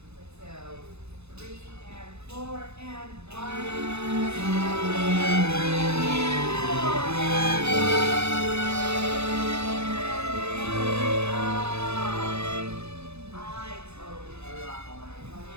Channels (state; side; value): late; left; 0.80 ms